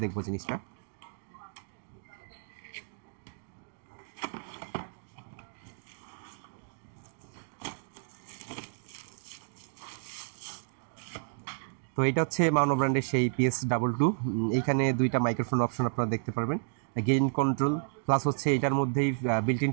দেখবো জিনিসটা। তো এটা হচ্ছে মাউনো ব্র্যান্ডের সেই PS22। এইখানে 2টা মাইক্রোফোন অপশন আপনারা দেখতে পারবেন, গেইন কন্ট্রোল প্লাস হচ্ছে এটার মধ্যেই বিল্ট ইন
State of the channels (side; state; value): left; silent; digital silence